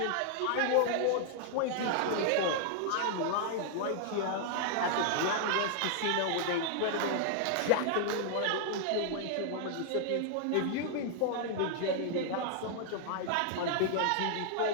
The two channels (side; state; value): both; different; correlation 0.00